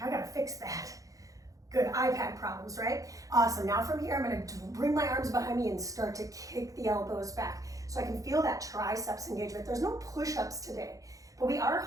fix that. Good, iPad problems, right? Awesome, now from here, I'm gonna bring my arms behind me and start to kick the elbows back so I can feel that triceps engagement. There's no push-ups today, but we are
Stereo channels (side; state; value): left; late; 0.17 ms